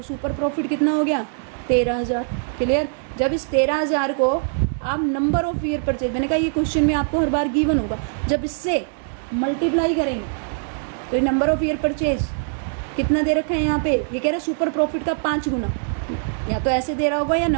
सुपर प्रॉफिट कितना हो गया 13,000। क्लियर। जब इस 13,000 को आप नंबर ऑफ ईयर परचेज, मैंने कहा ये क्वेश्चन में आपको हर बार गिवन होगा, जब इससे मल्टीप्लाई करेंगे तो नंबर ऑफ ईयर परचेज कितना दे रखा है यहाँ पे, ये कह रहा है सुपर प्रॉफिट का 5 गुना, या तो ऐसे दे रहा होगा या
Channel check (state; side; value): silent; left; 64 dB below the other